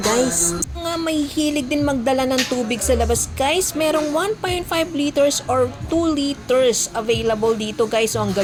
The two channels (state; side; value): identical; both; correlation 1.00